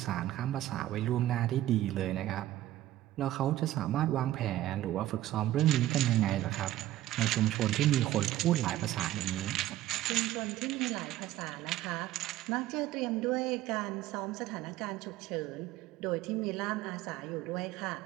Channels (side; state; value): left; quieter; 14.3 dB